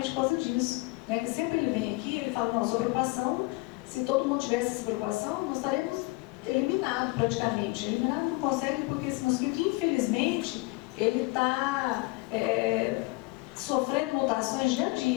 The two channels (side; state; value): right; quieter; 24.4 dB